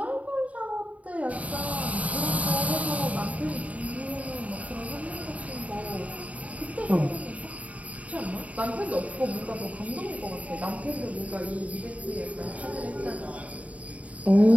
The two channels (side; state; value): left; late; 0.069 ms